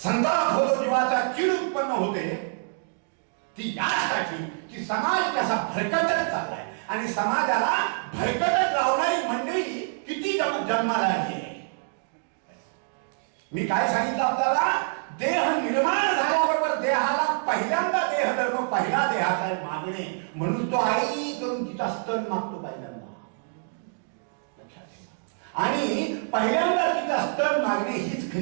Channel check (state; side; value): silent; left; digital silence